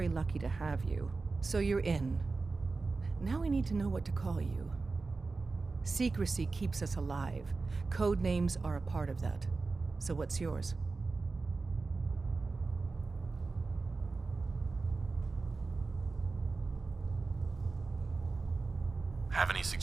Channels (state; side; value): quieter; left; 3.9 dB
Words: lucky to have you. So you're in. Now we need to know what to call you. Secrecy keeps us alive. Code names are a part of that. So what's yours? Have any